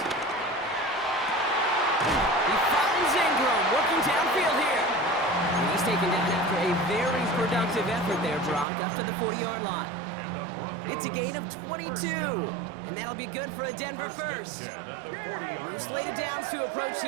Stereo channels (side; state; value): left; drops out; at 8.7 s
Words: He finds Ingram, working downfield here. And he's taken down after a very productive effort there, Brock, up to the 40-yard line. It's a gain of 22, and that'll be good for a Denver first. New slated downs to approach